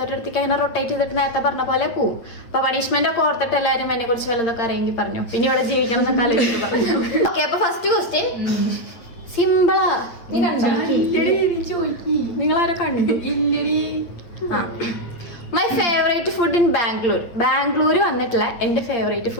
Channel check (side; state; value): right; late; 8.7 ms